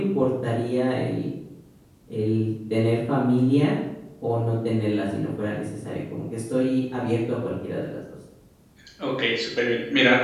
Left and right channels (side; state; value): both; identical; correlation 1.00